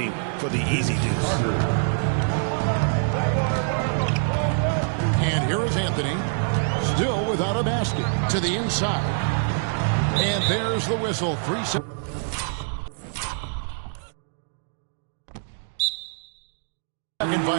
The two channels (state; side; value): silent; left; digital silence